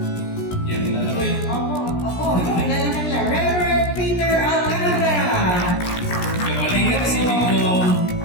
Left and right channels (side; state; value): right; late; 17 ms